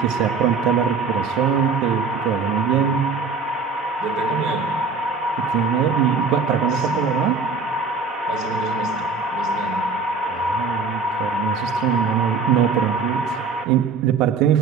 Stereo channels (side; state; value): left; quieter; 4.6 dB